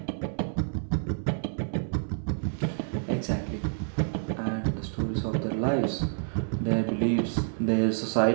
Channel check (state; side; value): silent; left; 59 dB below the other